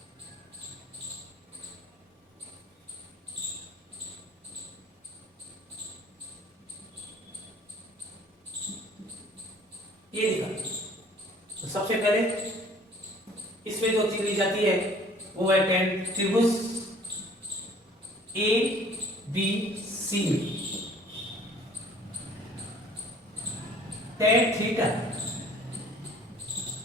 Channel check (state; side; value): normal; both; correlation 0.53